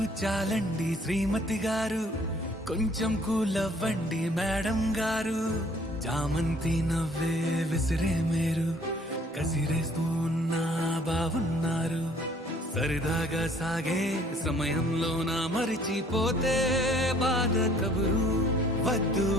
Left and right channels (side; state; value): both; normal; correlation 0.58